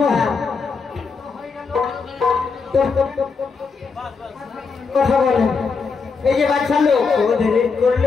কথা বলেন। এই যে বাচ্চা লোক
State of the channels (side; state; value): right; quieter; 5.0 dB